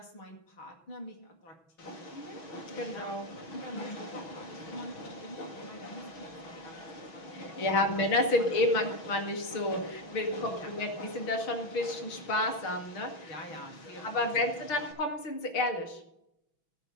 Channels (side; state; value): right; late; 6.2 ms